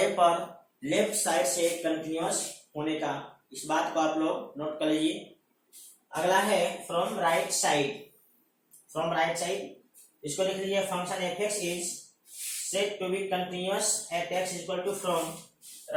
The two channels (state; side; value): identical; both; correlation 1.00